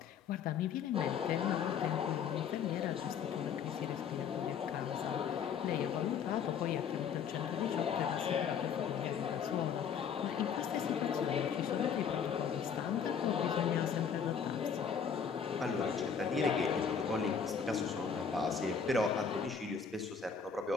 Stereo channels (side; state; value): right; quieter; 6.9 dB